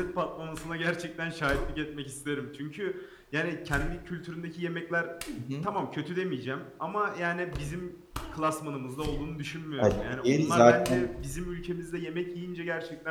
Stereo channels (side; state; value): both; identical; correlation 1.00